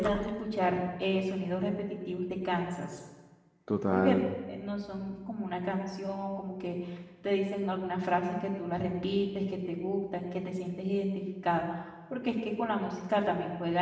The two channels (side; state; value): both; identical; correlation 1.00